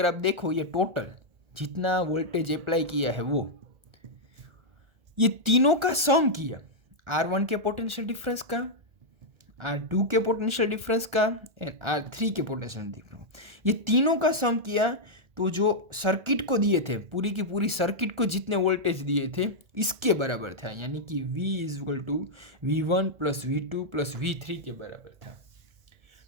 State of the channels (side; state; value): left; late; 1.4 ms